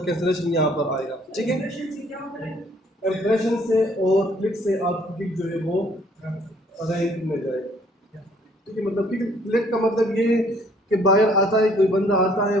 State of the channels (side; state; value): both; normal; correlation 0.62